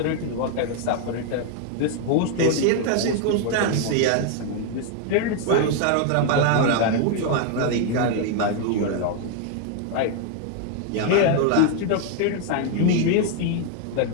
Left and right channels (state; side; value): different; both; correlation 0.00